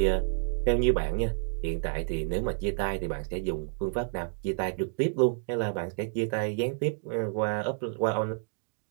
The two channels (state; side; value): silent; left; digital silence